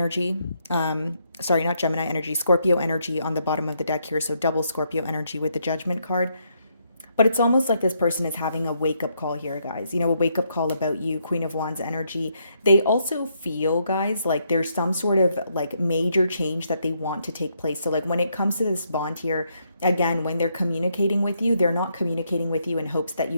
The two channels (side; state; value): both; inverted; correlation -0.76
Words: Sorry, not Gemini energy, Scorpio energy on the bottom of the deck here, so double Scorpio energy with the Judgment card. But it's almost like this person is having a wake-up call here, guys. A wake-up call about you, Queen of Wands energy. They also feel, guys, like there's some sort of like major change that they want to take place. So like when it comes to this bond here, again, when they're communicating with you, they're not communicating with you in hopes that